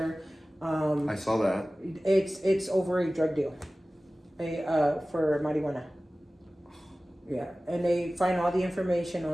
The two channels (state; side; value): normal; both; correlation 0.97